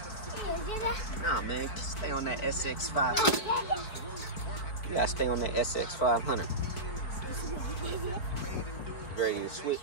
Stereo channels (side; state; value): right; late; 4.5 ms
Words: Nah, man. Stay on that SX 500. You gotta stay on that SX 500. Ready to switch?